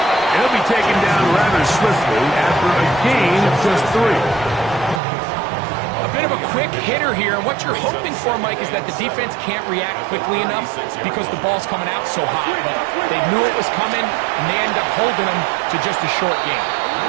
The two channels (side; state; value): left; drops out; at 5.0 s